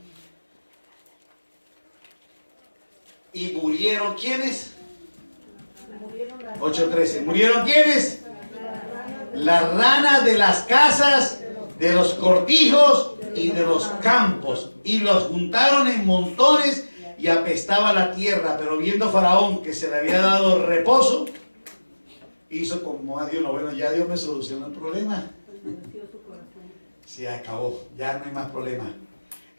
Y murieron, ¿quiénes? 8:13. ¿Murieron quiénes? Las ranas de las casas, de los cortijos y de los campos. Y los juntaron en montones y apestaba la tierra. Pero viendo Faraón que se le había dado reposo, hizo como a Dios, no, bueno, ya Dios me solucionó el problema. Se acabó, ya no hay más problema.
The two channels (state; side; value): inverted; both; correlation -1.00